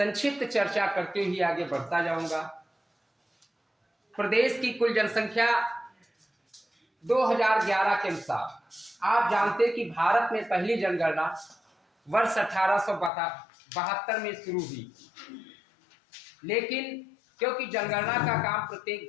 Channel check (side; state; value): right; drops out; at 13.1 s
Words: चर्चा करते हुए आगे बढ़ता जाऊंगा। प्रदेश की कुल जनसंख्या 2011 के अनुसार, आप जानते हैं कि भारत में पहली जनगणना वर्ष 1872 में शुरू हुई, लेकिन क्योंकि जनगणना का काम प्रत्येक